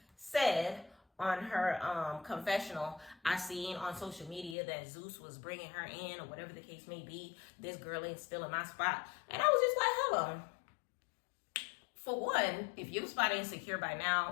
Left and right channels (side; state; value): right; drops out; at 4.5 s